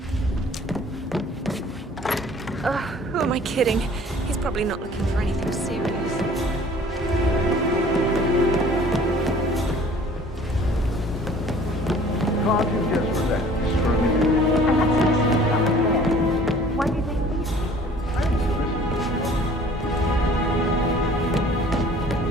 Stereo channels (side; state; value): both; normal; correlation 0.51